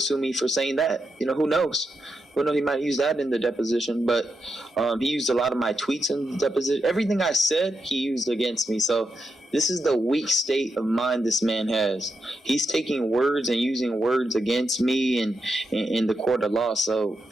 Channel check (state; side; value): normal; both; correlation 0.85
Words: sue me for saying that. You know, who knows? Who knows? He might use that in the deposition. But he used a lot of my tweets in the deposition. Everything I said, he used against me. So this is the weak state of mind this man has. He's taking words and using words against me in the court of law. So